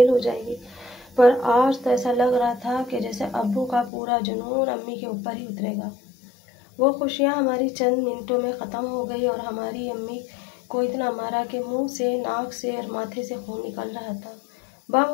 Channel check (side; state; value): right; drops out; at 3.9 s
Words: हो जाएगी। पर आज तो ऐसा लग रहा था कि जैसे अब्बू का पूरा जुनून अम्मी के ऊपर ही उतरेगा। वो खुशियाँ हमारी चंद मिनटों में ख़त्म हो गई और हमारी अम्मी को इतना मारा कि मुंह से, नाक से और माथे से खून निकल रहा था।